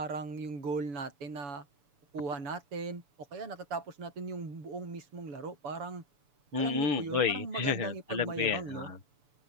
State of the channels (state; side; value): late; left; 6.9 ms